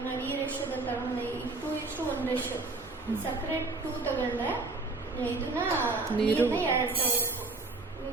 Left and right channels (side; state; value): left; quieter; 3.4 dB